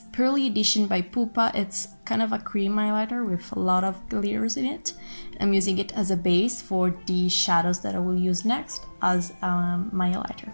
Pearly edition by Pupa. It's kind of a cream highlighter with a lot of glitters in it. I'm using it as a base for the shadows that I will use next as my highlighter.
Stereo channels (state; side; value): inverted; both; correlation -1.00